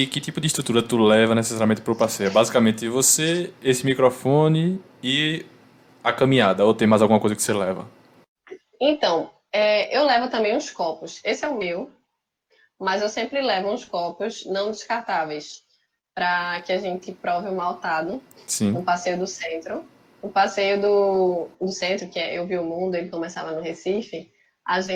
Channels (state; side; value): identical; both; correlation 1.00